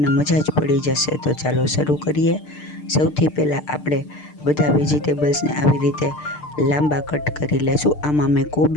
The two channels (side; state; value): right; late; 6.7 ms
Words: મજા જ પડી જશે. તો ચાલો શરૂ કરીએ. સૌથી પહેલાં આપણે બધા વેજીટેબલ્સને આવી રીતે લાંબા કટ કરી લેશું. આમાં મેં